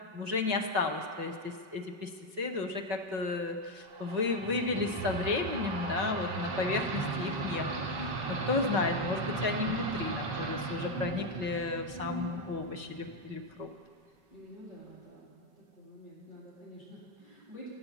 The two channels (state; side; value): late; left; 5.3 ms